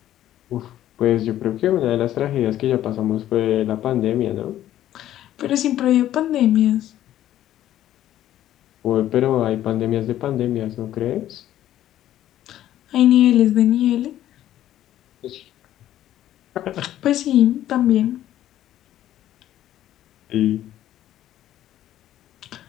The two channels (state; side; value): quieter; right; 12.6 dB